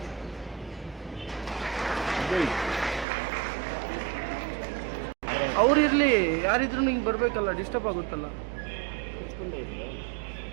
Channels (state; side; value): drops out; left; at 3.1 s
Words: ಅವ್ರಿರ್ಲಿ, ಯಾರಿದ್ರು ನಿಂಗೆ ಬರ್ಬೇಕಲ್ಲ, ಡಿಸ್ಟರ್ಬ್ ಆಗುತ್ತಲ್ಲ.